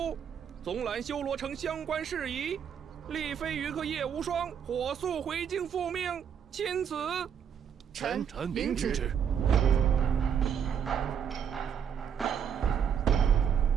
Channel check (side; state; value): left; quieter; 8.0 dB